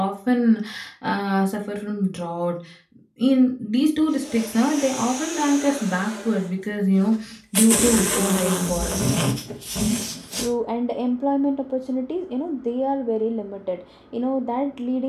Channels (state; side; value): identical; both; correlation 1.00